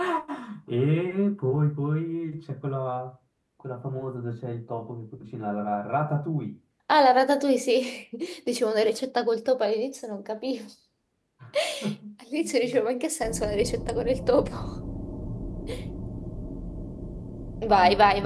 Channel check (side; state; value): both; identical; correlation 1.00